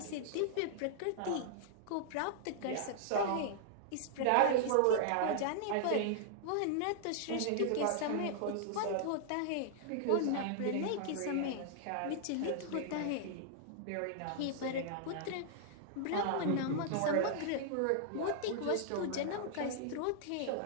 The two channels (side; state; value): both; different; correlation -0.01